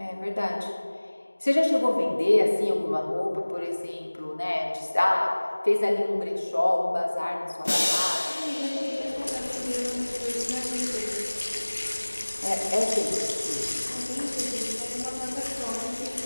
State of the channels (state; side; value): inverted; both; correlation -1.00